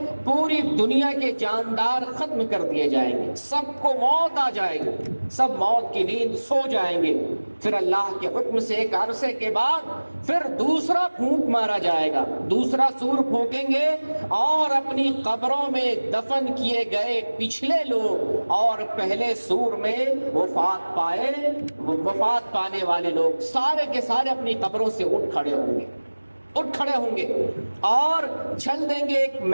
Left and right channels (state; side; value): inverted; both; correlation -1.00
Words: پوری دنیا کے جاندار ختم کر دیے جائیں گے، سب کو موت آ جائے گی، سب موت کی نیند سو جائیں گے۔ پھر اللہ کے حکم سے ایک عرصے کے بعد پھر دوسرا پھونک مارا جائے گا، دوسرا سور پھونکیں گے، اور اپنی قبروں میں دفن کیے گئے پچھلے لوگ اور پہلے سور میں وفات پانے والے لوگ سارے کے سارے اپنی قبروں سے اٹھ کھڑے ہوں گے اور چل دیں گے ایک